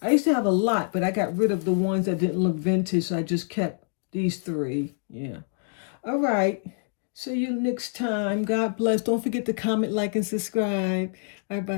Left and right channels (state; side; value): silent; right; digital silence